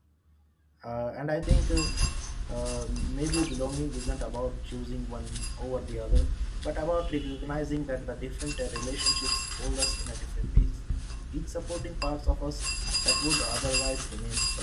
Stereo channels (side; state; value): both; identical; correlation 1.00